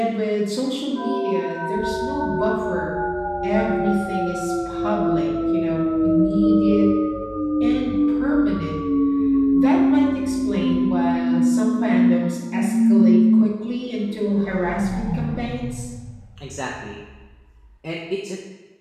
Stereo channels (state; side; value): identical; both; correlation 1.00